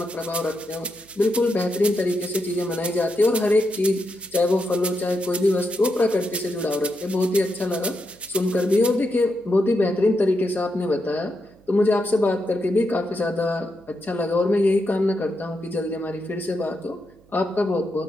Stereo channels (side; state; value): right; noise; hum, 28 dB below the sound